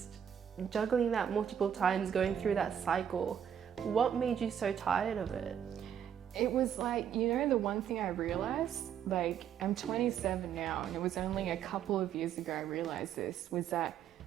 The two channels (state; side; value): quieter; left; 8.9 dB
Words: that multiple times, going through that cycle? What made you so tired of it? It was like, you know, the one thing I realized, like I'm 27 now, and it was only a couple of years ago I realized this, was that